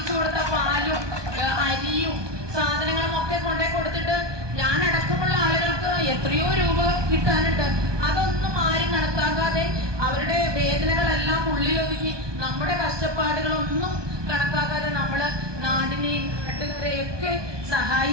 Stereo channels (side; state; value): left; late; 1.2 ms